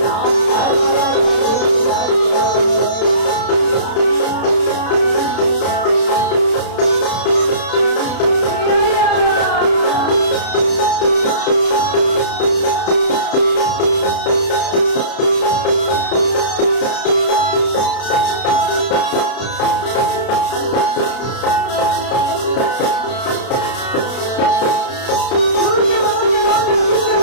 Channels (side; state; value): right; late; 32 ms